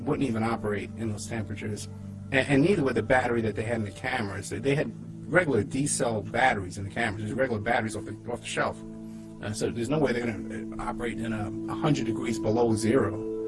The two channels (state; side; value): identical; both; correlation 1.00